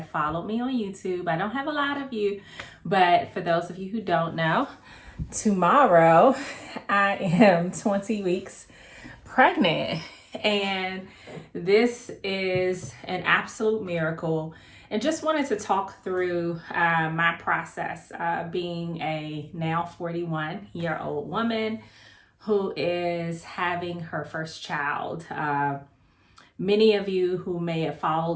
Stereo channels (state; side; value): identical; both; correlation 1.00